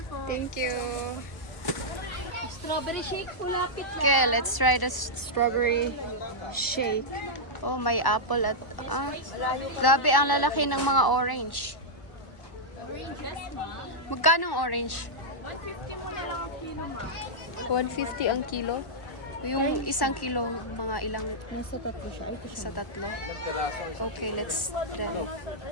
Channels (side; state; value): right; late; 1.0 ms